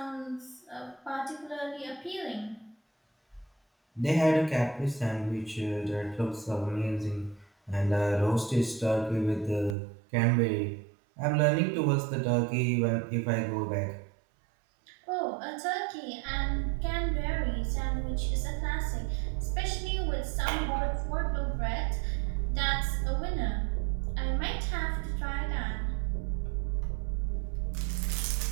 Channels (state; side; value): drops out; left; at 9.8 s